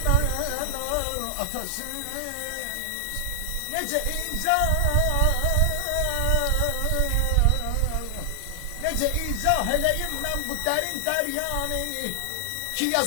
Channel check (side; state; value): both; different; correlation 0.00